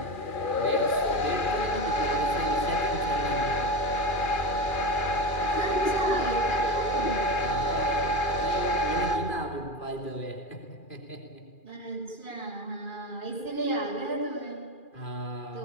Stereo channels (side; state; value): right; late; 2.4 ms